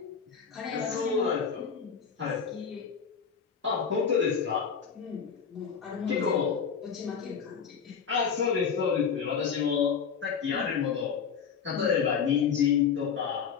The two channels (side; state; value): right; quieter; 6.7 dB